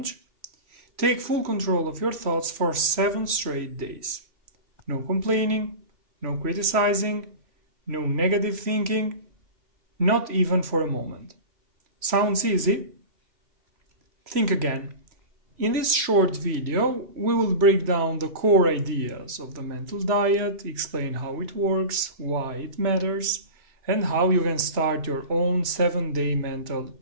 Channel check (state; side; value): late; left; 3.0 ms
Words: Take full control of your thoughts for 7 straight days. No complaining, no criticizing, no negative thinking, not even for a moment. Sounds easy? Think again. In this short video, we will break down the core ideas of the mental diet, explain how it works, why it matters, and how you can start your own 7-day mental